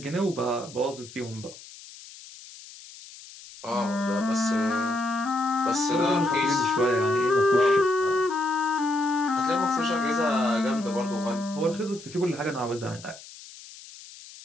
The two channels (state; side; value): noise; left; hiss, 18 dB below the sound